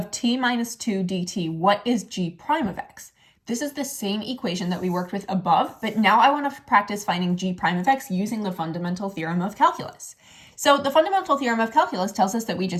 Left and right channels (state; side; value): identical; both; correlation 1.00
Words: t minus 2 dt, what is g prime of x? This is the same equation that we worked with above, but now I want to practice finding g prime of x using the fundamental theorem of calculus. So the fundamental theorem of calculus tells us that we